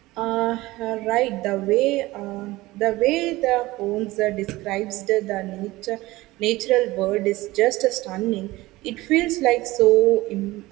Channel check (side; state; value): left; quieter; 19.1 dB